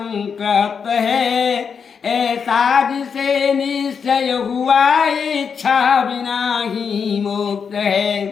है, ऐसा जिसे निश्चय हुआ इच्छा बिना ही मुक्त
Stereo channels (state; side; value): quieter; right; 6.4 dB